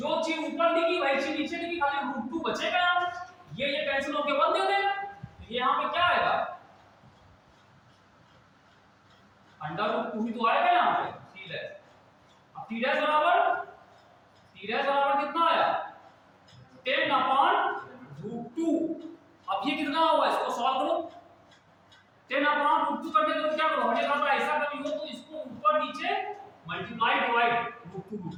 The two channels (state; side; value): identical; both; correlation 1.00